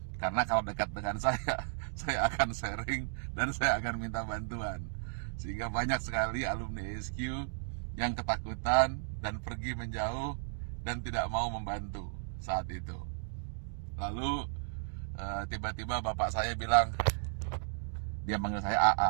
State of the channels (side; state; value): left; silent; digital silence